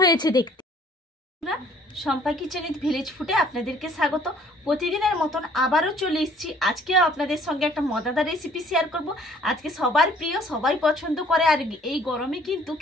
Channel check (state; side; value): normal; both; correlation 0.57